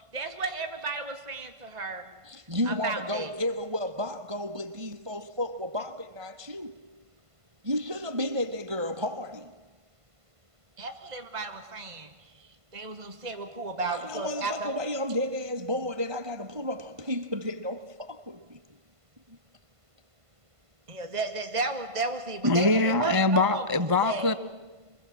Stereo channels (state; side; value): late; left; 1.5 ms